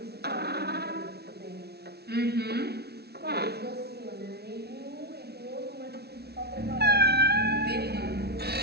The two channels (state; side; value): late; left; 0.47 ms